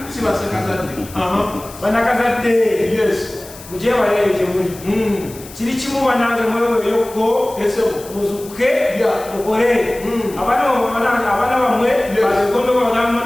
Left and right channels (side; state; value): left; noise; hiss, 17 dB below the sound